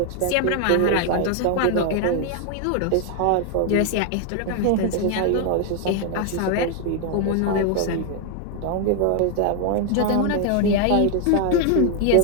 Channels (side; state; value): both; different; correlation 0.00